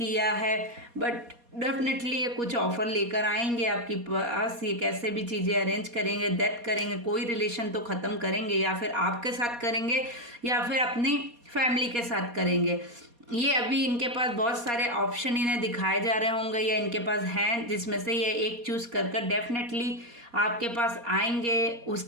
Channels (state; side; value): late; left; 4.2 ms